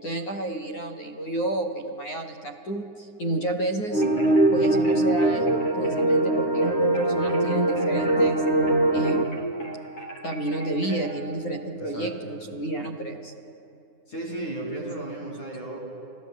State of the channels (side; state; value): right; late; 9.7 ms